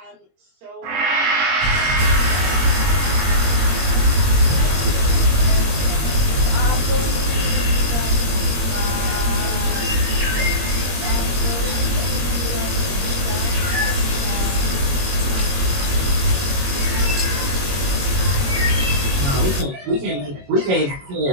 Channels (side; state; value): left; late; 21 ms